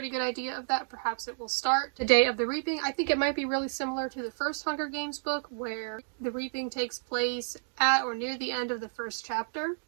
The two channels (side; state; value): left; silent; digital silence